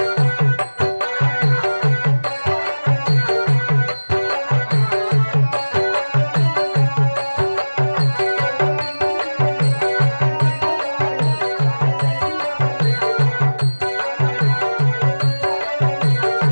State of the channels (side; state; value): both; inverted; correlation -1.00